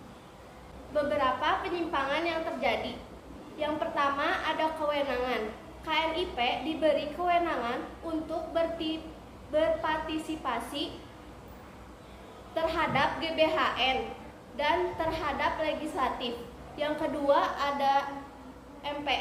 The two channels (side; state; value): both; identical; correlation 1.00